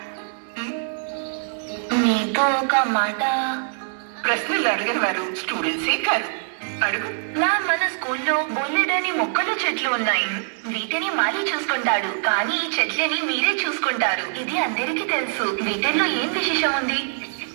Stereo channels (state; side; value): silent; left; digital silence